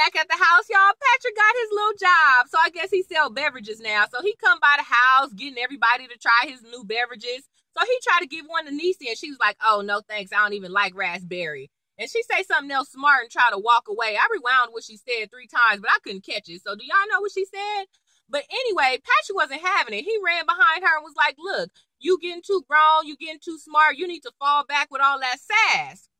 at the house, y'all, Patrick got his little job. So I guess he sell beverages now. So he come by the house, getting everybody to try his new beverages. So he tried to give one to Niecy, and she was like, oh, no, thanks. I don't even like raspberry. And she say something else smart and try to walk away. I rewound what she said 3 times, but I couldn't catch it. So do y'all know what she said? But anyway, Patrick wasn't having it. He ran behind her and was like, look, you getting too grown. You getting too smart. You need to fall back with all that sass.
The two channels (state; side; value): identical; both; correlation 1.00